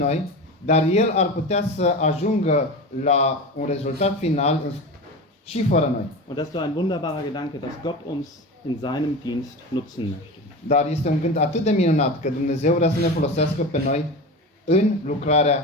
dar El ar putea să ajungă la un rezultat final și fără noi. Und das ist doch ein wunderbarer Gedanke, dass Gott uns in seinem Dienst nutzen möchte. Dar este un gând atât de minunat că Dumnezeu vrea să ne folosească pe noi în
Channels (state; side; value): normal; both; correlation 0.27